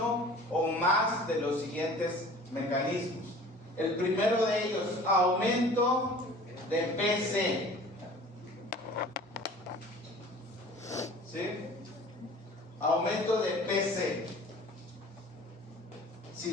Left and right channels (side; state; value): both; normal; correlation 0.45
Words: o más de los siguientes mecanismos. El primero de ellos, aumento de PC. ¿Sí? Aumento de PC. Si